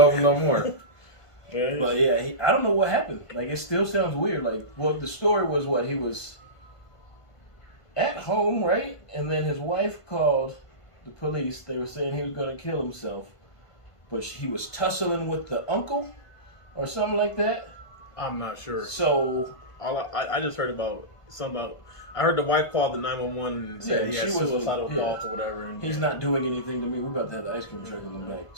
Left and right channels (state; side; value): late; right; 1.5 ms